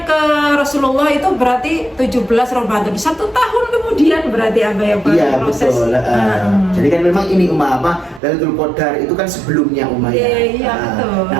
ke Rasulullah itu berarti 17 Ramadan. 1 tahun kemudian berarti proses. Betul. Jadi kan memang ini Lailatul Qadar itu kan sebelumnya ya. Iya, betul.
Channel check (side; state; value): left; drops out; at 8.2 s